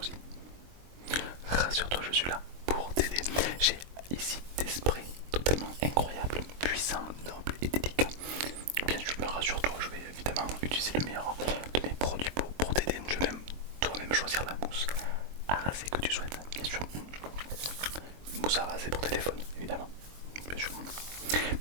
Rassure-toi, je suis là pour t'aider. J'ai ici des sprays totalement incroyables, puissants, nobles et délicats. Bien sûr, rassure-toi, je vais évidemment utiliser le meilleur de mes produits pour t'aider. Tu vas même toi-même choisir la mousse à raser que tu souhaites. Bien sûr, une mousse à raser pour téléphone, évidemment. Bien sûr.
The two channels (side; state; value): left; late; 23 ms